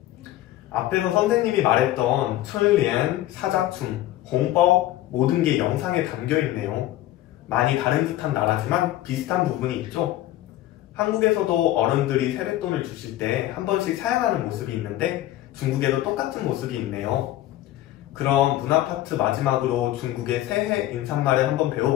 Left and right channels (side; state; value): right; quieter; 14.5 dB